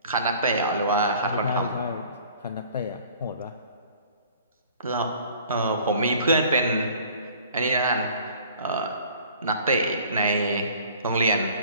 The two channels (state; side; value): inverted; both; correlation -0.51